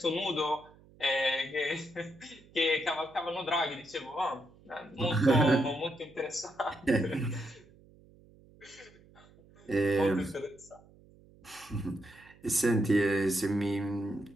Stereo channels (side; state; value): right; noise; hum, 26 dB below the sound